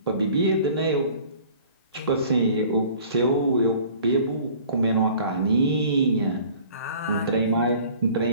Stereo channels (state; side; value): inverted; both; correlation -0.49